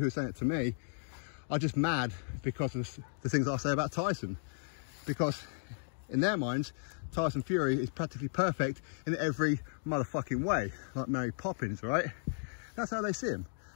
who are saying it to me are just mad because of the things I say about Tyson. Because in their minds, Tyson Fury is practically perfect in every motherfucking way, like Mary Poppins, right? That's how they see him.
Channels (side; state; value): right; silent; digital silence